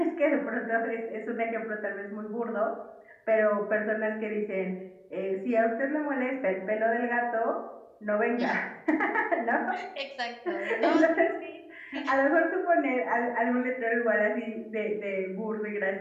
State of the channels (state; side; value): identical; both; correlation 1.00